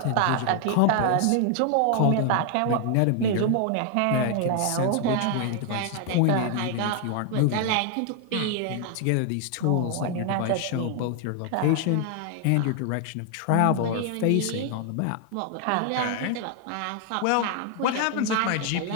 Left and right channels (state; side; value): different; both; correlation 0.00